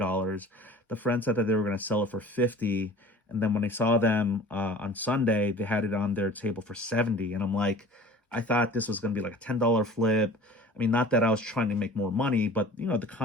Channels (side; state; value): both; normal; correlation 0.44